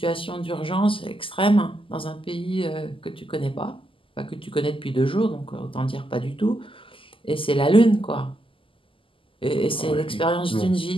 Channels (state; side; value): late; right; 0.25 ms